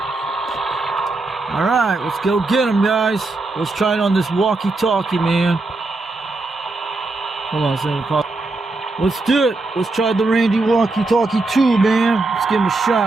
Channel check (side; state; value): left; quieter; 3.3 dB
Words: Alright, let's go get them, guys. Let's try it on this walkie-talkie, man. Hold on a second. Let's do it. Let's try the Randy walkie-talkie 2, man. Let's give him a